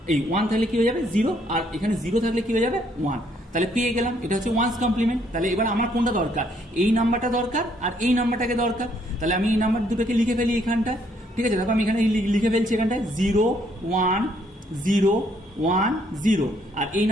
এই 1 থাকলে কি হয়ে যাবে 0, আর এখানে 0 থাকলে কি হয়ে যাবে 1। তাহলে পেয়ে গেলাম, এটা হচ্ছে ওয়ান্স কমপ্লিমেন্ট। তাহলে এবার আমার কোনটা দরকার, এই নাম্বারটা দরকার আর এই নাম্বারটাকে দরকার। তাহলে আমি এই নাম্বার দুটোকে লিখে ফেলি এখানটা, ঠিক আছে। দেখো আমি এখানে লিখে ফেলছি এখানটায় 0 1 0 1 0, আর এই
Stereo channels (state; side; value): normal; both; correlation 0.69